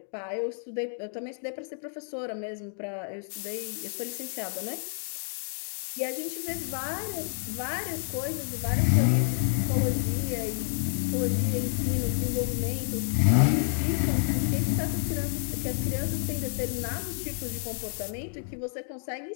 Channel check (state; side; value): silent; right; digital silence